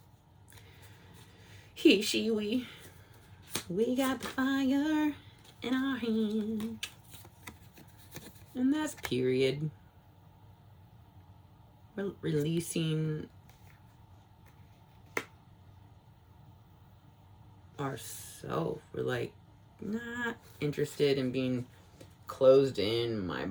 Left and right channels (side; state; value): both; identical; correlation 1.00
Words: He, she, we got the fire in our hand. And that's period. We're releasing ourselves. We're like not interested in being closed in my